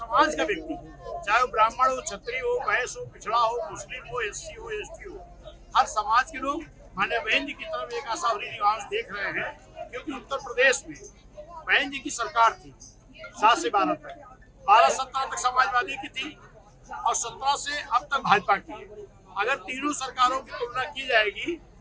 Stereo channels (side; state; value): both; identical; correlation 1.00